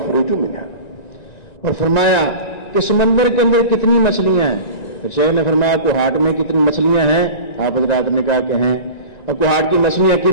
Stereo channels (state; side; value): late; right; 1.9 ms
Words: منها। और फरमाया कि समंदर के अंदर कितनी मछलियां हैं। फिर शेख ने फरमाया कुहाट में कितनी मछलियां हैं, आप हज़रात ने कहा कि हैं। और कुहाट की मछलियां